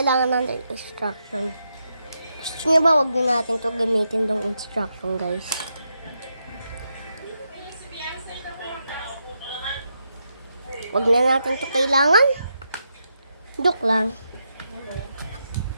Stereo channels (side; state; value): both; inverted; correlation -0.83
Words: natin instruction? Gusto nyo ba wag na natin to gamitin tong instruction, guys? Wag na natin to kailangan? Joke lang.